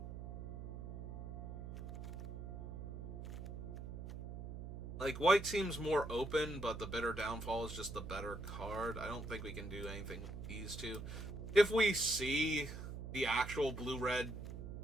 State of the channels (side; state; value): right; noise; hum, 7 dB below the sound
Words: Like, white seems more open, but the Bitter Downfall is just the better card. I don't think we can do anything with these two. If we see the actual blue-red